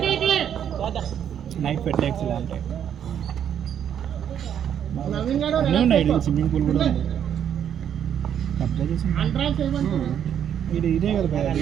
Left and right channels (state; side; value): quieter; left; 9.2 dB